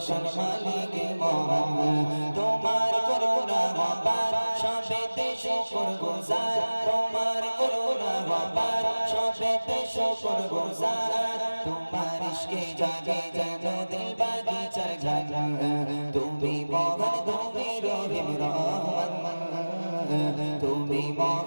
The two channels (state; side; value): inverted; both; correlation -1.00